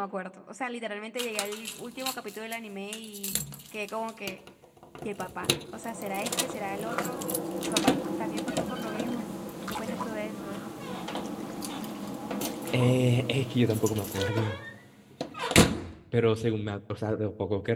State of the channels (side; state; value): both; identical; correlation 1.00